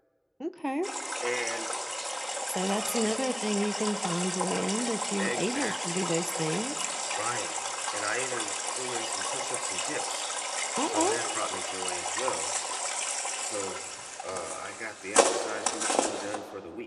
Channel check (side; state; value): both; identical; correlation 1.00